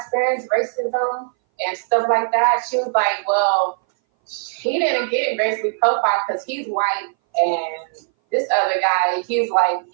racism and stuff like that? She was like, well, he didn't get racially profiled because he's white, and this other guy, he's like,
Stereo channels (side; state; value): left; silent; 61 dB below the other